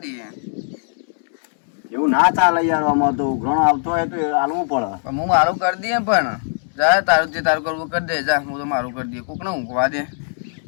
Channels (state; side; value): silent; right; 66 dB below the other